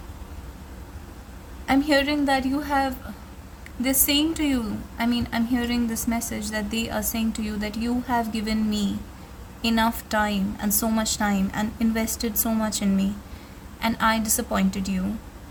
I'm hearing that you have, they're saying to you, I'm hearing this message that they are saying to you that you have given me enough time and so much time and invested so much in me, and I disappointed you.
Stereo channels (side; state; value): both; identical; correlation 1.00